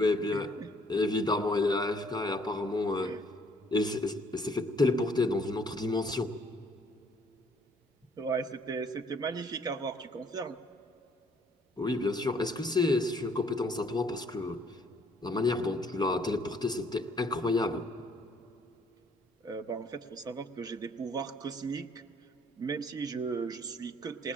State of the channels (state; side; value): normal; both; correlation 0.62